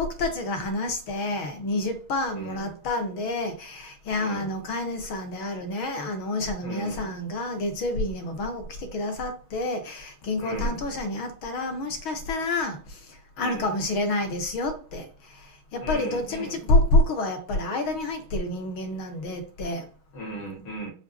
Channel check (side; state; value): right; late; 6.3 ms